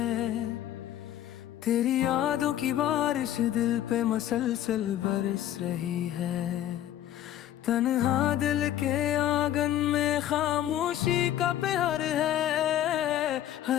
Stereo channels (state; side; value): quieter; right; 12.0 dB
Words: तेरी यादों की बारिश दिल पे मसलसल बरस रही है। तन्हा दिल के आंगन में खामोशी का प्यार है,